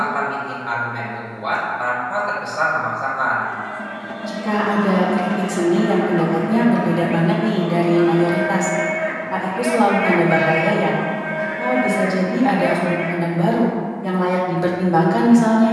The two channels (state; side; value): identical; both; correlation 1.00